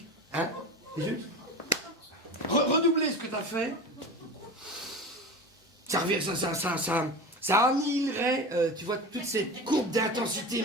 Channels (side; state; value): both; normal; correlation 0.29